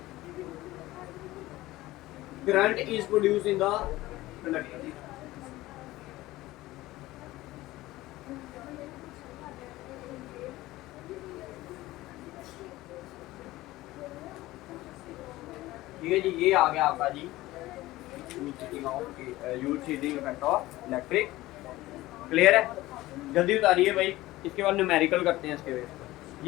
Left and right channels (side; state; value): right; quieter; 17.6 dB